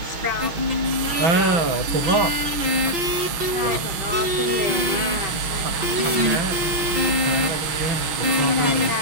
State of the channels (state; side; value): late; left; 5.8 ms